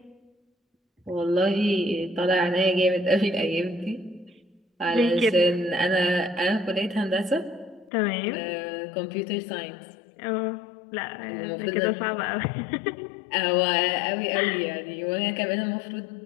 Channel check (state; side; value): drops out; right; at 7.9 s